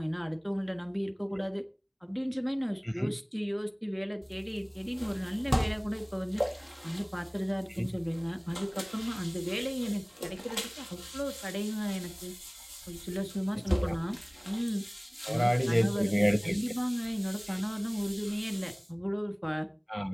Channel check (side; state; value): both; identical; correlation 1.00